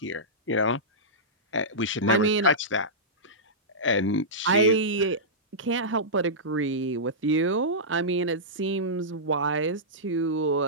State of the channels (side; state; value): both; normal; correlation -0.15